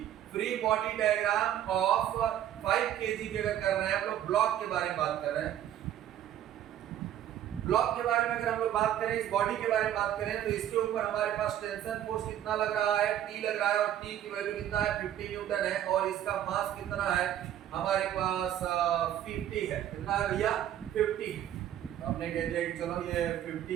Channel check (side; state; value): left; quieter; 11.2 dB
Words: free body diagram of 5 kg की अगर कर रहे हैं, हम लोग ब्लॉक के बारे में बात कर रहे हैं। ब्लॉक के बारे में अगर हम लोग बात करें, इस बॉडी के बारे में बात करें, तो इसके ऊपर हमारे पास टेंशन फोर्स कितना लग रहा है, T लग रहा है, और T की वैल्यू कितना है, 50 न्यूटन है, और इसका मास कितना है हमारे पास 50 है। कितना है भैया, 50। हमने कह दिया कि चलो ये